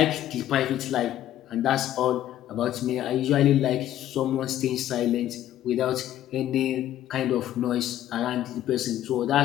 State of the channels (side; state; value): right; quieter; 12.4 dB